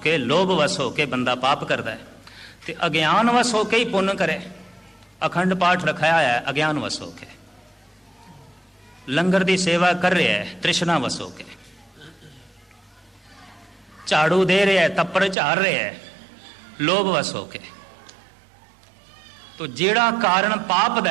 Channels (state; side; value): drops out; left; at 15.4 s